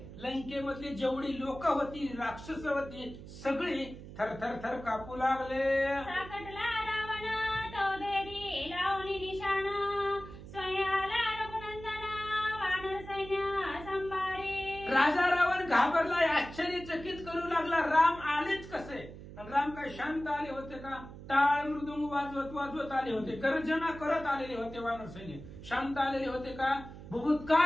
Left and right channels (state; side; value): noise; right; hum, 14 dB below the sound